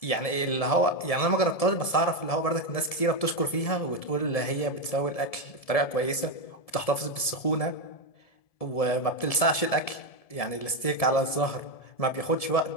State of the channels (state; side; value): late; right; 1.7 ms